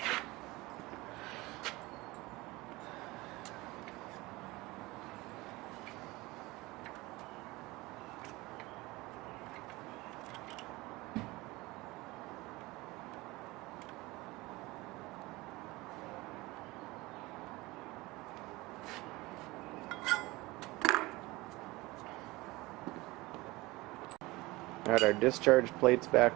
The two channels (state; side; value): quieter; left; 21.3 dB